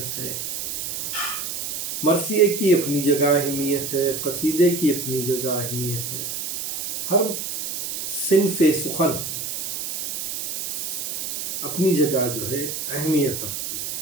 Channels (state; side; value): noise; right; hiss, 4 dB below the sound